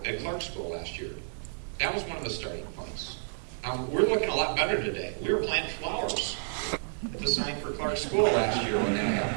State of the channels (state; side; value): silent; left; 58 dB below the other